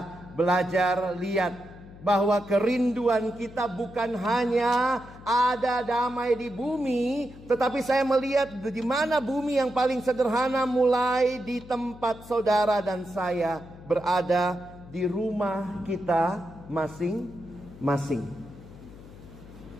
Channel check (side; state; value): left; noise; hum, 18 dB below the sound